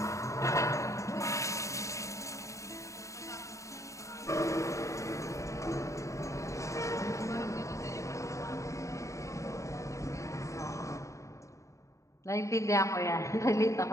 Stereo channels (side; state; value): right; late; 0.15 ms